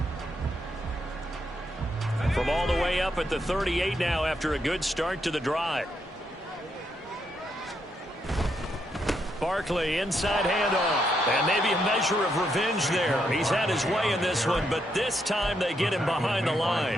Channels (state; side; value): normal; both; correlation 0.78